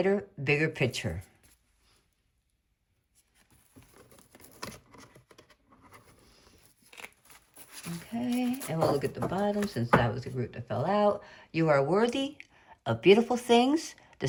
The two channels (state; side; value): identical; both; correlation 1.00